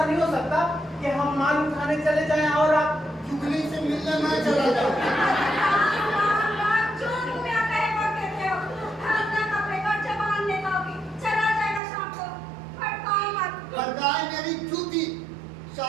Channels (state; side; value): drops out; left; at 11.8 s